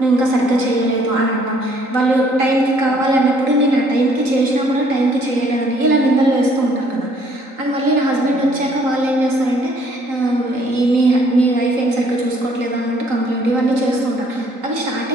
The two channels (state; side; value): late; left; 3.9 ms